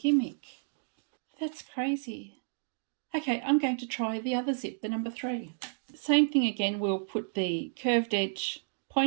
That's crazy. Okay, I'm going to try the other zip, the number 3. Same thing again, we'll put the curved edge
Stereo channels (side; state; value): left; silent; digital silence